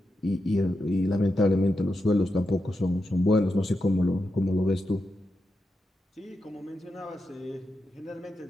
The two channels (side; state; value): both; normal; correlation 0.87